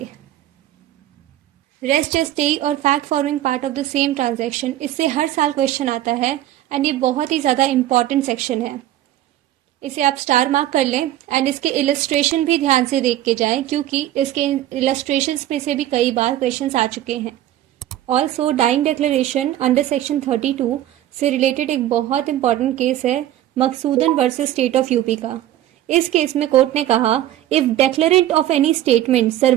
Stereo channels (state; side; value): quieter; left; 13.2 dB